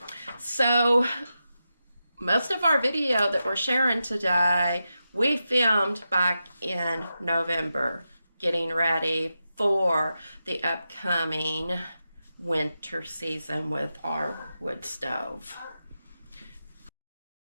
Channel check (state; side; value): inverted; both; correlation -0.89